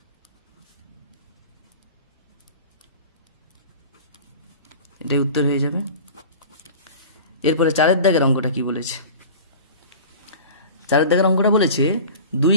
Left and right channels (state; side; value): inverted; both; correlation -0.39